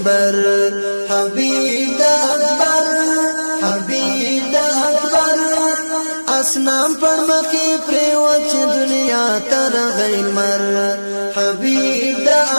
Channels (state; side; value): inverted; both; correlation -1.00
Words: حبیب دا اکبر حبیب دا اکبر اسنام پر مخی پریوت چی دنیا تر غیر مر حبیب دا